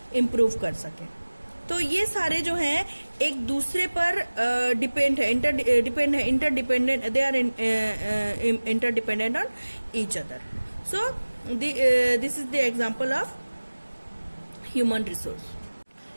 इम्प्रूव कर सकें. तो ये सारे जो हैं एक दूसरे पर डिपेंड है, interdependent, they are interdependent on each other. So, this is the example of human resource.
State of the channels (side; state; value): both; inverted; correlation -1.00